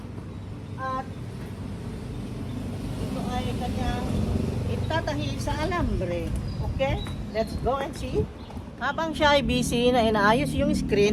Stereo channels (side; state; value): both; identical; correlation 1.00